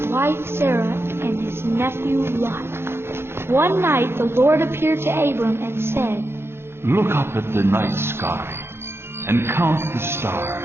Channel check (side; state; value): left; late; 0.12 ms